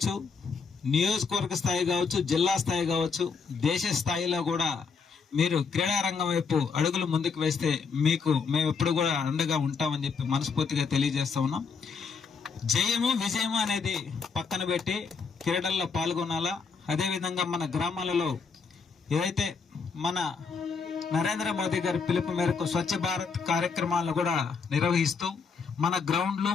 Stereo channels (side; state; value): right; quieter; 5.4 dB